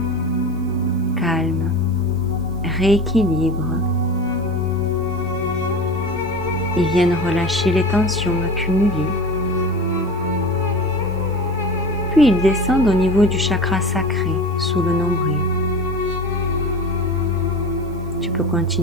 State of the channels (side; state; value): right; noise; hiss, 30 dB below the sound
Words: calment, rééquilibrent. Ils viennent relâcher les tensions accumulées. Puis ils descendent au niveau du chakra sacré, sous le nombril. Tu peux